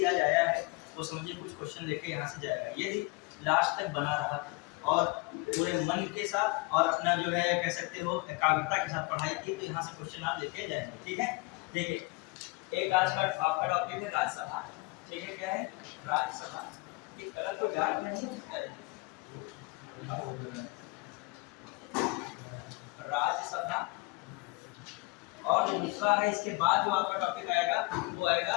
आज आया है वो समझिए कुछ क्वेश्चन लेके यहाँ से जाएगा, यदि लास्ट तक बना रहा और पूरे मन के साथ और अपना जो है कह सकते हो एकाग्रता के साथ पढ़ाई की, तो यहाँ से क्वेश्चन आप लेके जाएंगे। ठीक है, देखिए एक आज का आपका टॉपिक है राज्यसभा। ठीक है, क्या है राज्यसभा। ये कलर को डार्क नहीं राज्यसभा। और जो दूसरा है इसके बाद जो आपका टॉपिक आएगा वो आएगा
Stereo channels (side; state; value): right; quieter; 25.8 dB